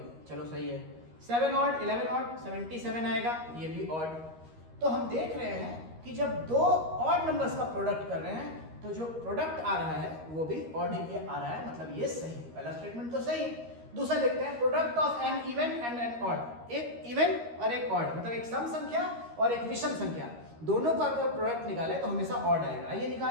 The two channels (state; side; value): late; left; 13 ms